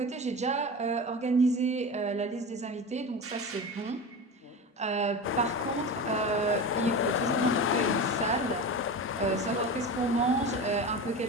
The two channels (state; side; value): normal; both; correlation 0.27